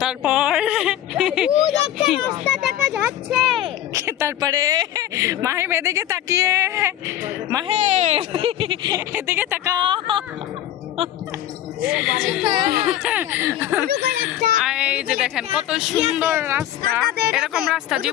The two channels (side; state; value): right; quieter; 12.3 dB